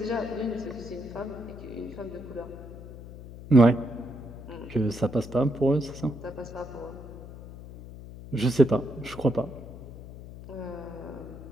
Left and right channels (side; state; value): left; noise; hum, 14 dB below the sound